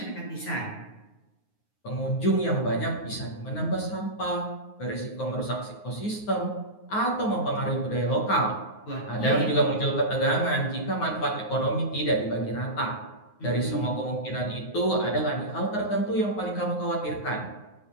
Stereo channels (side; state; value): right; late; 9.5 ms